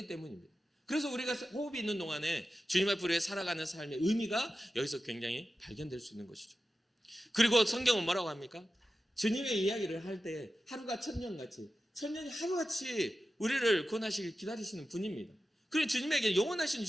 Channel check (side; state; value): both; normal; correlation 0.93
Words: 때문입니다. 그래서 우리가 호흡이 있는 동안에 주님 앞으로 살아가는 삶의 의미가 여기서 굉장히 발견될 수 있는 것이죠. 그리고 성경은 뭐라고 합니까? 주님의 이야기를 할 때 하루가 천년같이 천년이 하루같이 우리를 구원하시길 기다리시는 분입니다. 그리고 주님에게 영원하신